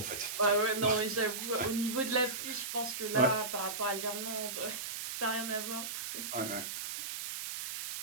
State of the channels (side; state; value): right; noise; hiss, 5 dB below the sound